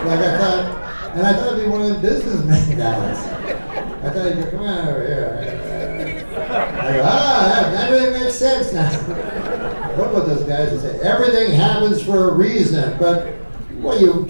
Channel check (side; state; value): both; inverted; correlation -1.00